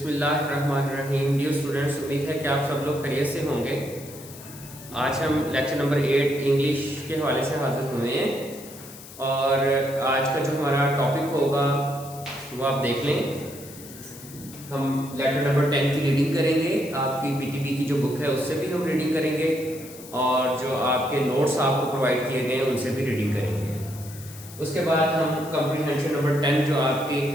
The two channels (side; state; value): left; noise; hiss, 17 dB below the sound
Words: Dear students, उम्मीद है कि आप सब लोग खैरियत से होंगे। आज हम लेक्चर नंबर 8 इंग्लिश के हवाले से हाजिर हुए हैं और आज का जो हमारा टॉपिक होगा वो आप देख लें। हम लेक्चर नंबर 10 की रीडिंग करेंगे, आपकी पीटीबी की जो बुक है उससे भी हम रीडिंग करेंगे और जो आपके नोट्स आपको प्रोवाइड किए गए हैं उनसे भी रीडिंग करेंगे। उसके बाद हम कंप्रीहेंशन नंबर 10 जो आपकी